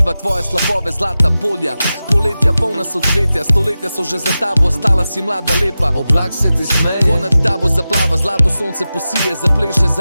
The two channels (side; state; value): both; inverted; correlation -0.94